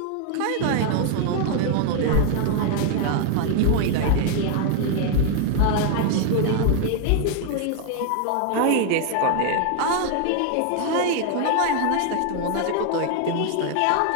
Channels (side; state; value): both; different; correlation 0.01